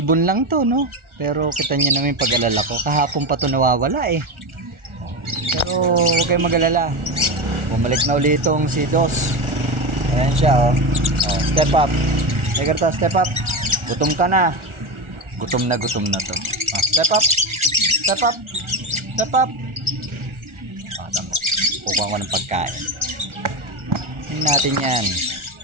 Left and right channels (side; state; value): left; late; 1.4 ms